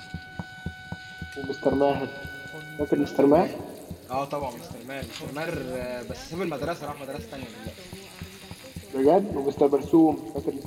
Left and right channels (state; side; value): identical; both; correlation 1.00